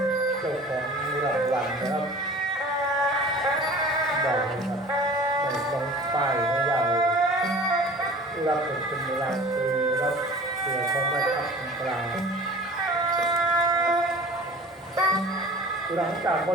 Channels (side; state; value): both; normal; correlation 0.43